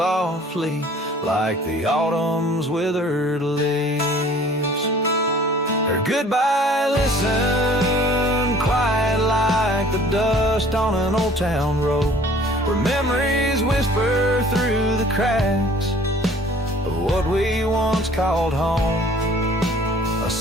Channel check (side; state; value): both; normal; correlation 0.51